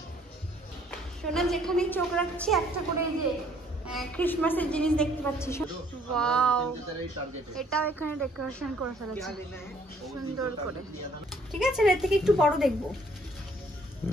সোনা যেখানেই চোখ রাখছি একটা করে এই যে ক্রিসমাসের জিনিস দেখতে পাচ্ছি। ওয়াও, এটাও এখানে ডেকোরেশন করে ফেলেছে সুন্দর করে। ঠিক আছে, এর থেকে একটু বড় দেখবো।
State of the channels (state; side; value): normal; both; correlation 0.62